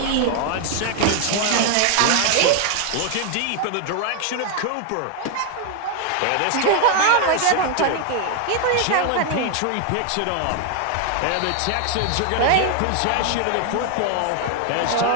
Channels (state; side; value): different; both; correlation 0.00